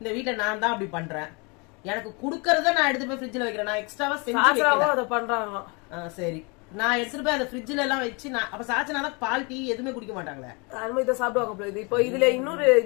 வீட்டுல நான் தான் அப்படி பண்றேன், எனக்கு குடுக்கறத நான் எடுத்து போய் ஃப்ரிட்ஜ்ல வைக்கிறேன், நான் எக்ஸ்ட்ராவா செஞ்சு பண்றாங்க. சரி, நான் எடுத்துட்டு போய் அந்த ஃப்ரிட்ஜ்ல எல்லாம் வச்சு நான் அப்ப சாச்சனா பால் டீ எதுவுமே குடிக்க மாட்டாங்களே, அதுமாதிரி இதை சாப்பிடுவாங்க. இப்போ இதுல இன்னொரு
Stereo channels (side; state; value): right; quieter; 30.5 dB